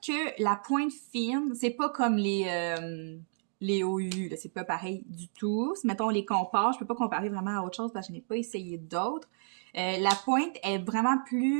la pointe fine, c'est pas comme les OU, c'est pas pareil du tout. Si, mettons, on les compare, je peux pas comparer vraiment à autre chose parce que je n'ai pas essayé d'autres. La pointe est vraiment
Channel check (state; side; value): silent; left; digital silence